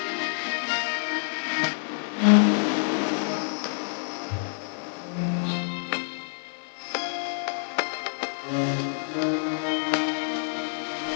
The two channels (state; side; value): silent; right; digital silence